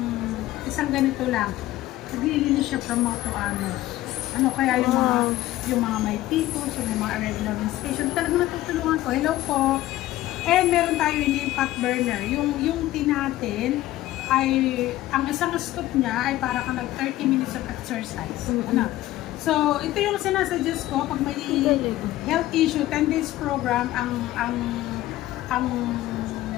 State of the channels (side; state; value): right; quieter; 15.5 dB